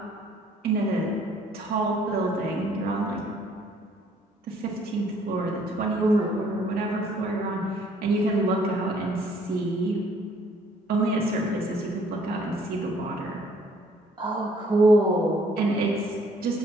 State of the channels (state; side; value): normal; both; correlation 0.61